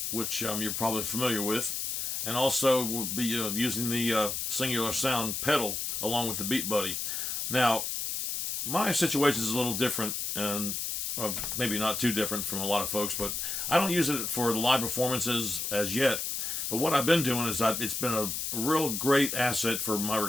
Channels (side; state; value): left; noise; hiss, 2 dB below the sound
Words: which you're probably familiar with, and also we'll be using the Singular Sound pedal along with the Beat Buddy. Now, my situation is a little different, and maybe not too different from a lot of folks, but I don't use it for the live performances as yet. But what I've been doing is it's been a real great asset for my